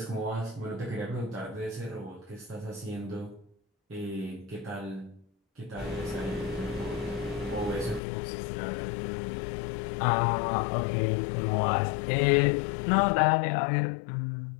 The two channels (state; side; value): drops out; right; at 8.0 s